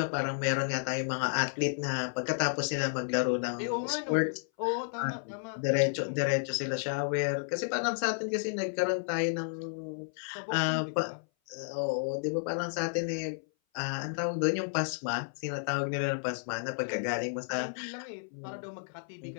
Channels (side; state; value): right; silent; 56 dB below the other